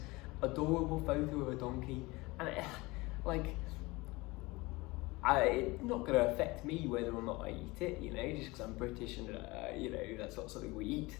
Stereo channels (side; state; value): right; quieter; 22.8 dB